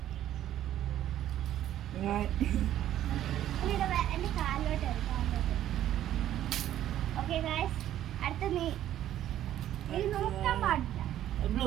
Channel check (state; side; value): quieter; left; 12.1 dB